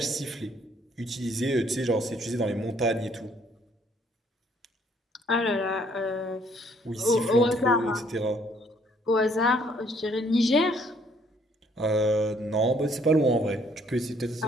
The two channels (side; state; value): both; normal; correlation 0.64